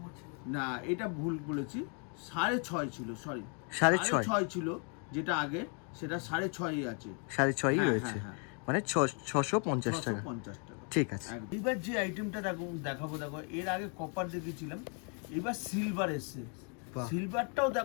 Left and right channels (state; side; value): quieter; right; 39.3 dB